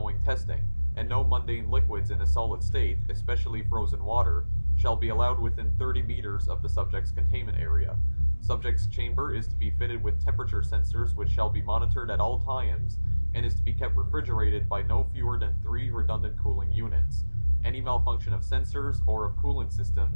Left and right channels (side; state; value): both; inverted; correlation -1.00